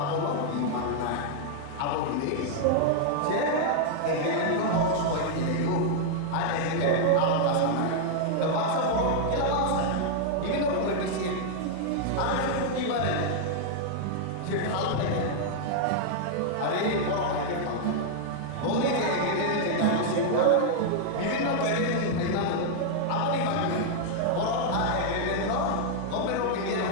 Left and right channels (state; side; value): different; both; correlation -0.01